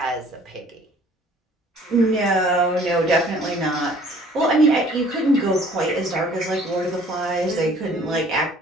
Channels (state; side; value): normal; both; correlation 0.54